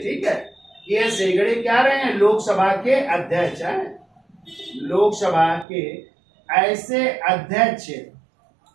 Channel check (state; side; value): drops out; left; at 5.7 s